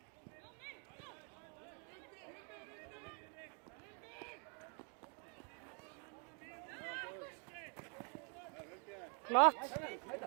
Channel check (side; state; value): left; quieter; 39.0 dB